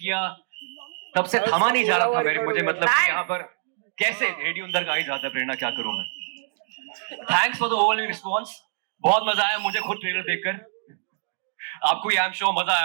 तब से थामा नहीं जा रहा था मुझे, मतलब कि यहाँ पर कैसे रेडियो अंदर का ही जाता है, प्रेरणा क्या करूं मैं। Thanks for the overwhelming response, बहुत मजा आया मुझे खुद ट्रेलर देखकर। आपको आई एम श्योर मजा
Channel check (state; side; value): silent; left; digital silence